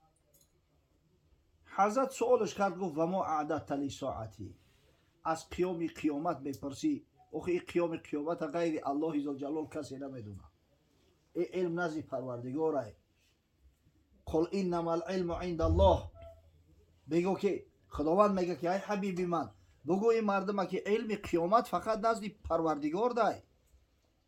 حضرت سوالش کرد گفت و ما اعددت لساعتی، از قیامت میپرسی؟ آخه این قیامت غیر الله ذوالجلال کسی نمیدونه، این علم نزد پروردگاره. قل انما العلم عند الله، بگو که خداوند میگه که ای حبیب من بگو این مردم که علم قیامت فقط نزد پروردگار ده،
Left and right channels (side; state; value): both; identical; correlation 1.00